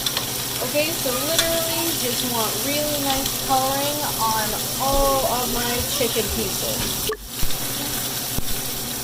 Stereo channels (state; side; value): identical; both; correlation 1.00